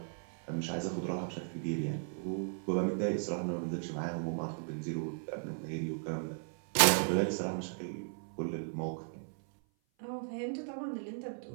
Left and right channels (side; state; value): left; silent; 54 dB below the other